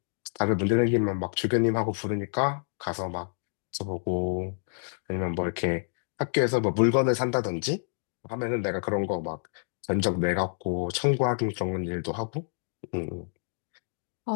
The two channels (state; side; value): silent; right; digital silence